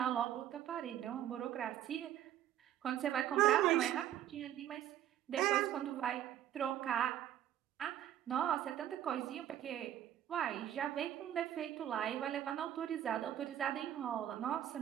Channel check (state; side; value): quieter; left; 11.4 dB